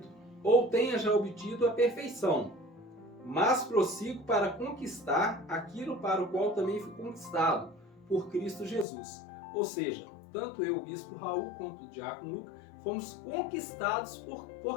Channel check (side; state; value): right; drops out; at 8.8 s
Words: ou tenha já obtido a perfeição, mas prossigo para conquistar aquilo para o qual também fui conquistado, por Cristo Jesus. Ou seja, tanto eu, o bispo Raul, quanto o diácono Luca, fomos conquistados